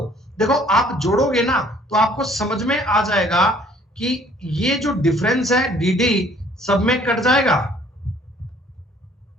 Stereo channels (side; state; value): both; normal; correlation 0.58